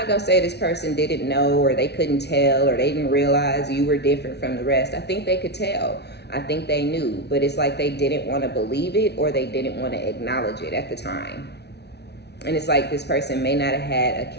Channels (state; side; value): late; right; 0.49 ms